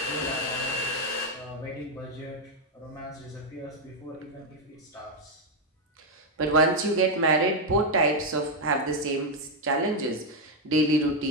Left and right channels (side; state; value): both; normal; correlation 0.03